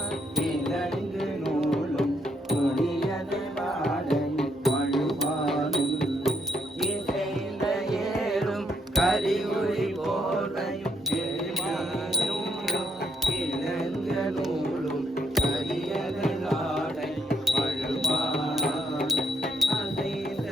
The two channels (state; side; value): normal; both; correlation 0.72